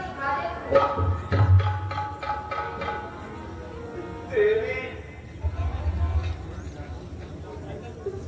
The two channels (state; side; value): identical; both; correlation 1.00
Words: दे तू। देवी,